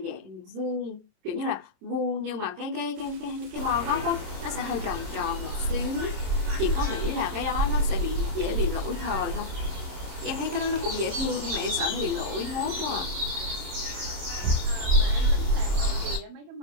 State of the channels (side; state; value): left; late; 27 ms